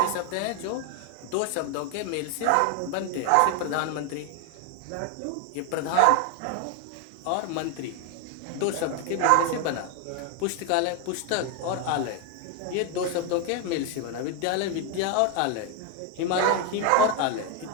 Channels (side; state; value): both; different; correlation 0.01